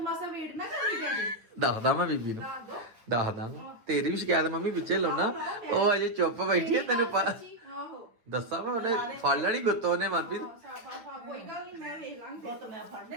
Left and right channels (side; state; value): left; late; 9.0 ms